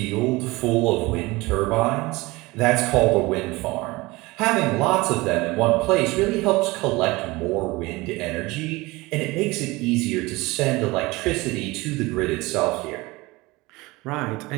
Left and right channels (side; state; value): left; quieter; 22.0 dB